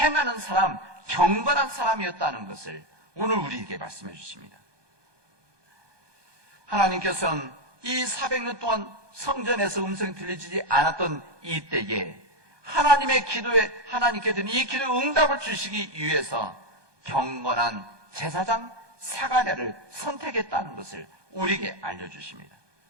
사람, 경건한 사람이었다는 것을 오늘 우리에게 말씀해 주십니다. 하나님께서는 이 400년 동안 성전에서 음성이 들리지 않았던 이때에 하나님의 기도에 하나님께서는 이 기도에 응답을 주시기 위해서 경건한 제사장 사가랴를 선택했다는 것을 우리에게 알려주십니다.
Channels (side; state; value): left; late; 1.2 ms